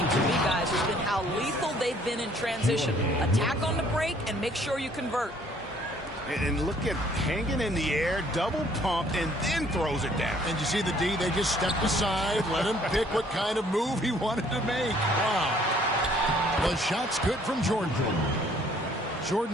to me, guys, has been how lethal they've been in transition. Attack on the break and make sure you convert. And look at hanging in the air, double pump, and then throws it down. And you see the D, they just stepped aside, let him pick what kind of move he wanted to make. Wow. The shot's good from Jordan.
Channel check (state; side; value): normal; both; correlation 0.60